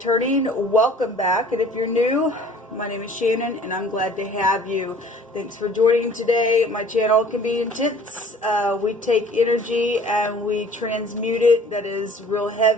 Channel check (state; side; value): normal; both; correlation 0.50